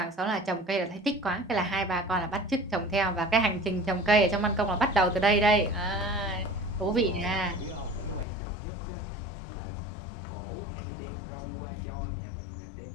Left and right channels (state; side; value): drops out; right; at 8.2 s